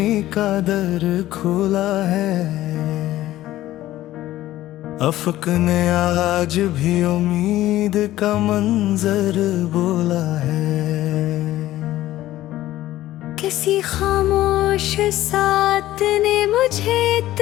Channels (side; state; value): right; quieter; 14.8 dB